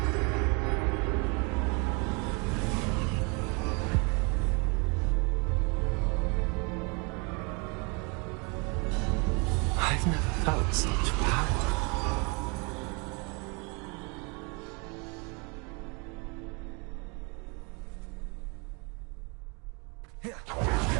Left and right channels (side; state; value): left; quieter; 31.8 dB